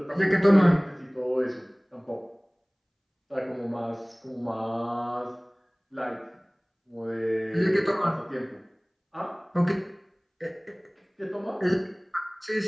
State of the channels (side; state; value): both; identical; correlation 1.00